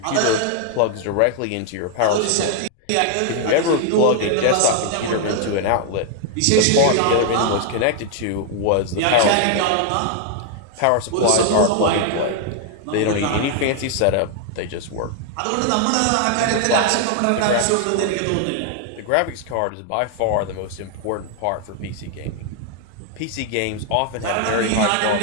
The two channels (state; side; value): different; both; correlation 0.00